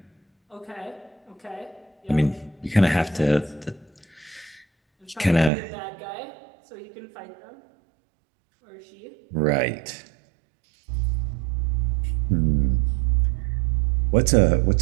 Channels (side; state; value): left; drops out; at 5.5 s